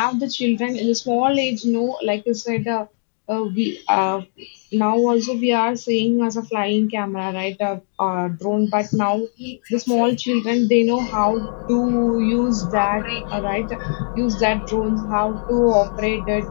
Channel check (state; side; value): silent; right; digital silence